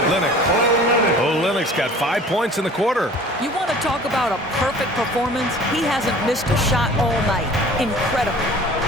Olynyk's got 5 points in the quarter. You want to talk about a perfect performance? He hasn't missed a shot all night. Incredible.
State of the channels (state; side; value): normal; both; correlation 0.45